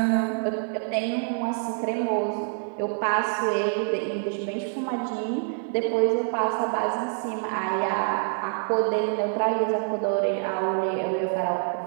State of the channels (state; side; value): silent; left; digital silence